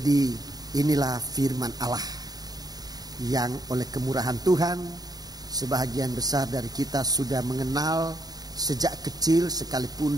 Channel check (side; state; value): left; late; 0.19 ms